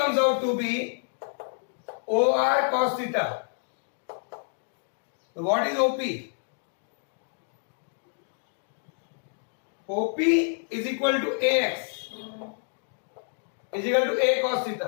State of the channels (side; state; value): right; silent; digital silence